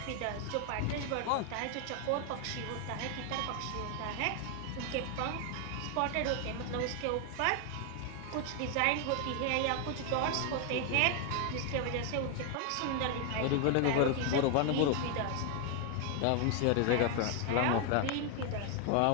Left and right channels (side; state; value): both; different; correlation 0.00